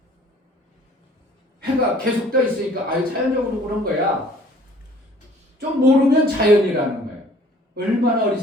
해가 계속 떠 있으니까 자연적으로 그런 거야. 좀 모르면 자연이라는 거예요. 얼마나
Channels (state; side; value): normal; both; correlation 0.54